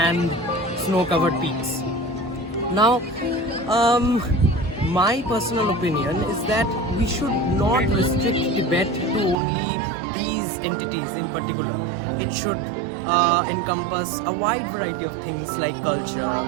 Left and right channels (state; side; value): drops out; left; at 9.3 s